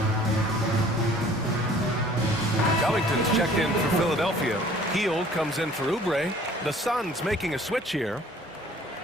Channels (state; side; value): normal; both; correlation 0.53